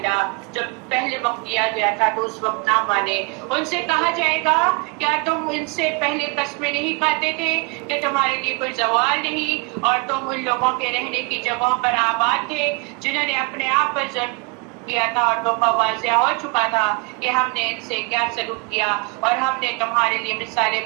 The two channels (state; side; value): quieter; left; 29.8 dB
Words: جب پہلے وقت دیا گیا تھا تو اس وقت نہ مانے. ان سے کہا جائے گا کیا تم ان سے پہلے قسمیں نہیں کھاتے تھے کہ تمہارے لیے کوئی زوال نہیں اور تم ان لوگوں کے رہنے کی جگہوں پر آباد تھے جنہوں نے اپنے آپ پر ظلم کیا تھا اور تو واضح ہو چکا تھا کہ ہم نے ان سے کیا سلوک کیا اور ہم نے تمہارے لیے مثالیں